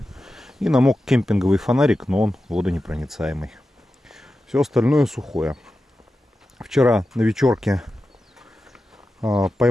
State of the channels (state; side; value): normal; both; correlation 0.92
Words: и намок кемпинговый фонарик, но он водонепроницаемый. Все остальное сухое. Вчера на вечерке